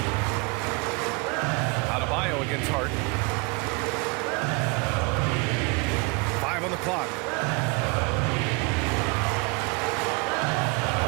Adebayo against Hart. 5 on the clock.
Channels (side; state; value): left; quieter; 28.5 dB